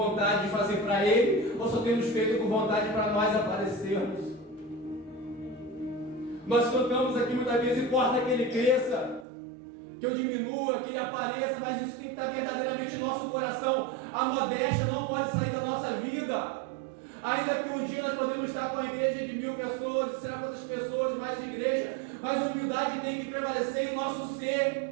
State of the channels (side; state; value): left; drops out; at 9.2 s